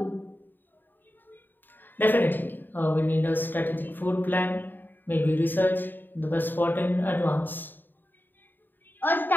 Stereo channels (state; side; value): late; right; 0.092 ms